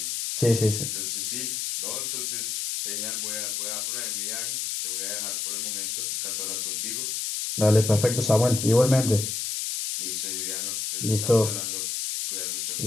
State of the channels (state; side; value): noise; left; hiss, 2 dB below the sound